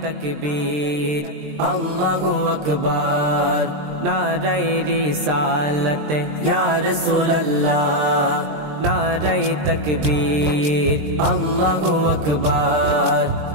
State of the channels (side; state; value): left; late; 20 ms